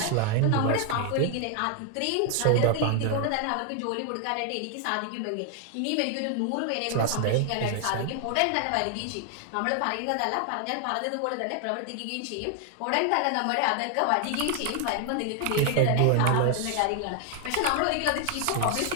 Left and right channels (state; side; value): different; both; correlation 0.00